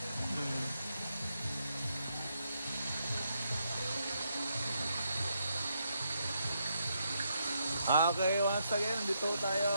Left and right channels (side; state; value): both; inverted; correlation -0.79